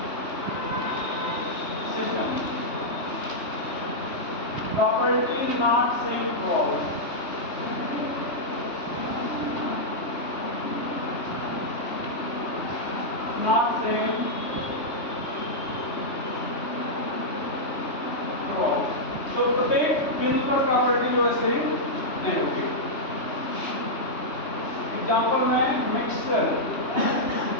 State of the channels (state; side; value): late; right; 3.1 ms